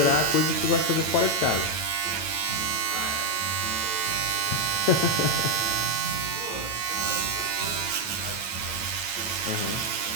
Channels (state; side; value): late; right; 9.0 ms